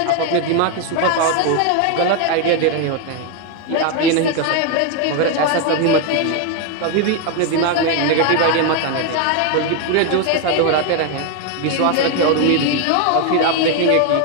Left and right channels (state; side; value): different; both; correlation 0.01